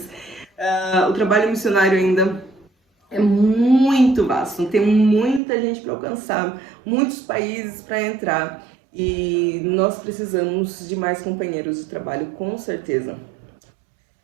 O trabalho missionário ainda é muito vasto, tem muita gente para alcançar, muitos países para entrar e nós precisamos de mais companheiros de trabalho, com certeza.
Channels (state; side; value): drops out; left; at 5.4 s